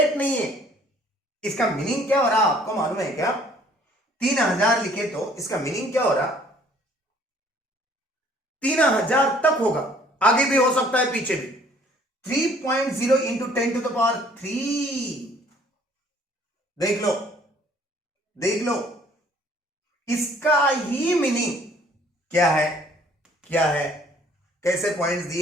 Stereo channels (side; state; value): both; normal; correlation 0.58